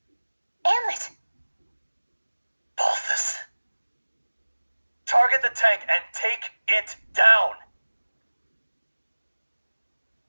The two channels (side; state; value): both; inverted; correlation -1.00